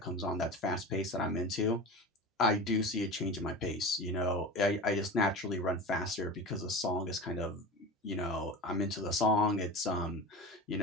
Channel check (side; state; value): both; normal; correlation 0.30